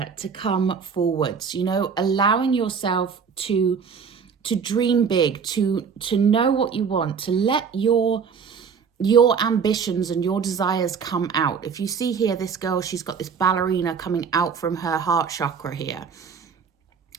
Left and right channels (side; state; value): left; quieter; 6.2 dB